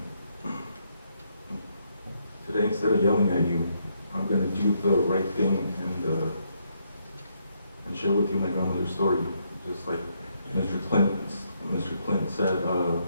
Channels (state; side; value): inverted; both; correlation -0.75